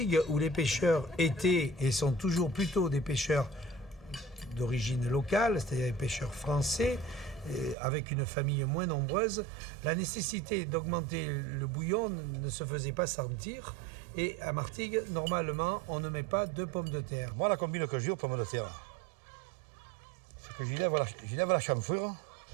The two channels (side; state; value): left; drops out; at 7.8 s